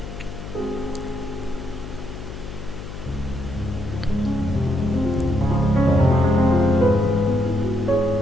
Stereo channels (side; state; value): left; noise; hum, 11 dB below the sound